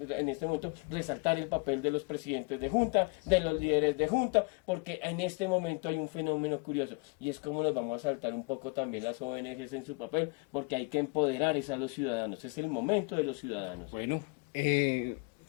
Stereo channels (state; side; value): quieter; right; 31.6 dB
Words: este momento resaltar el papel de los presidentes de junta, de los líderes de junta, porque en este momento hay un fenómeno curioso, y es como nos vamos a saltar un poco también las ONGs en su papel, porque hay que empoderar a los ciudadanos. Es el momento de los ciudadanos. Bueno,